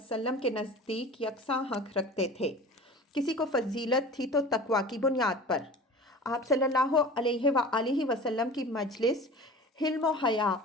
کے نزدیک یکساں حق رکھتے تھے۔ کسی کو فضیلت تھی تو تقویٰ کی بنیاد پر۔ آپ صلی اللہ علیہ وآلہ وسلم کی مجلس حلم و حیا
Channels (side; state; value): both; normal; correlation 0.39